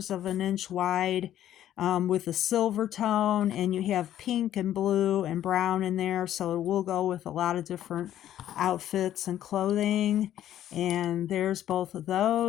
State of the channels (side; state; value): right; quieter; 11.8 dB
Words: of an inch wide, with a silver tone, and you have pink and blue and brown in there, so it will go with a lot of different outfits and clothing. And there's both of